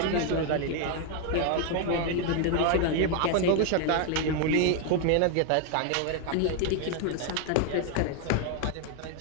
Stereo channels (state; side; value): different; both; correlation 0.01